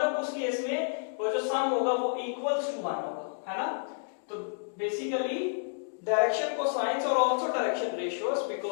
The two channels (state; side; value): silent; right; digital silence